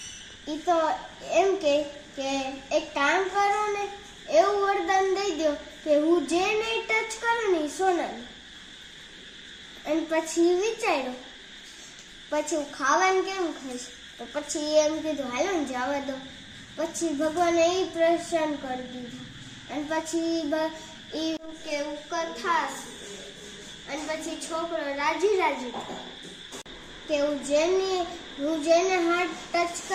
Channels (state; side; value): identical; both; correlation 1.00